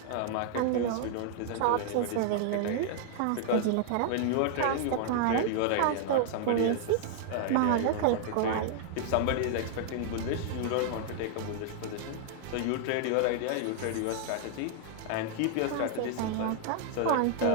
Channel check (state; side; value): different; both; correlation -0.01